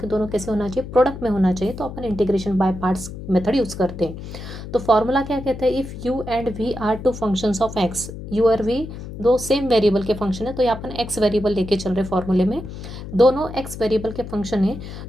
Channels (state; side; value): noise; left; hum, 10 dB below the sound